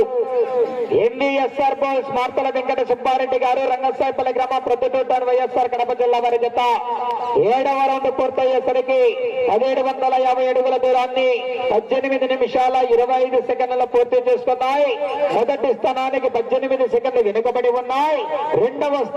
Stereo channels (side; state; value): both; identical; correlation 1.00